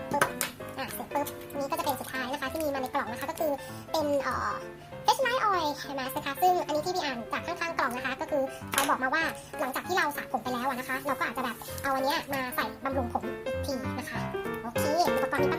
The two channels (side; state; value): both; identical; correlation 1.00